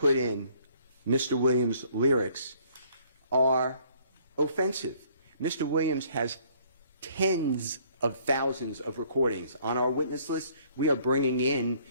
in Mr. Williams' lyrics are offensive. Mr. Williams has tens of thousands of recordings. On our witness list, we are bringing in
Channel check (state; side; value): inverted; both; correlation -0.61